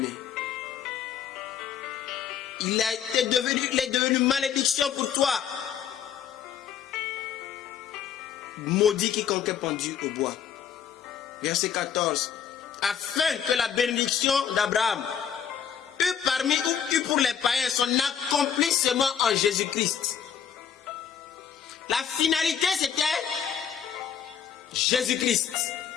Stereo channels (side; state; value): right; quieter; 8.4 dB